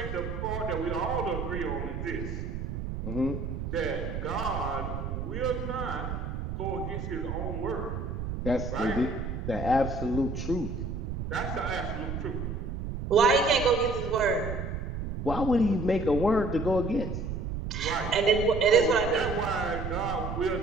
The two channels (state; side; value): noise; right; rumble, 5 dB below the sound